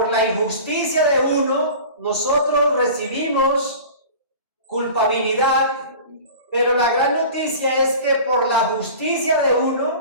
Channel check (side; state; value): both; inverted; correlation -0.39